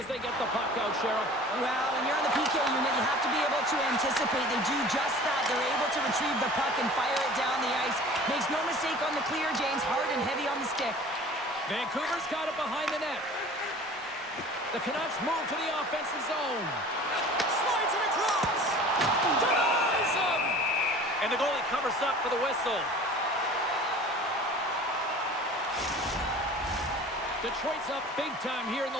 they get the puck out, Cheryl. Well, when you're on the PK unit, you have to be able to anticipate. They do just that. They're able to retrieve the puck and fire it down the ice. Makes no mistake on the clear, James. Hard and heavy on the stick. Vancouver's got it behind the net. The Canucks move to the offensive zone. Slides it across. Denies him. And the goalie covers up for the whistle. Detroit's up big time here in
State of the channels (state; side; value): normal; both; correlation 0.44